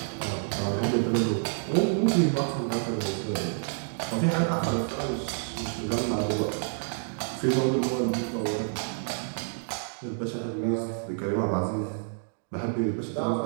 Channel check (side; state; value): left; silent; digital silence